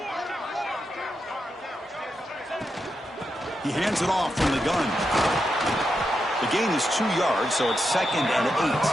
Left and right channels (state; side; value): normal; both; correlation 0.86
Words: He hands it off from the gun. The gain is 2 yards, so it's 2nd and